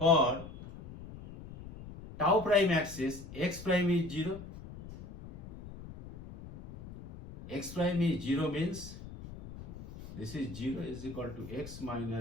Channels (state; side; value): noise; left; rumble, 14 dB below the sound